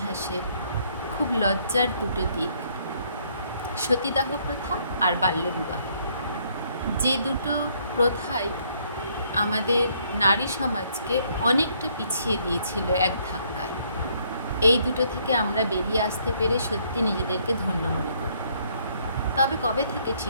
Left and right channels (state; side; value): inverted; both; correlation -0.67